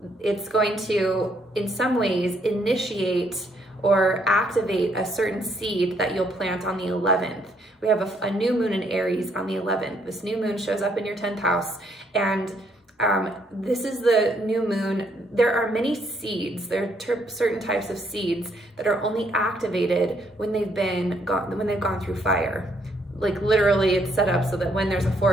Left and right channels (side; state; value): both; normal; correlation 0.70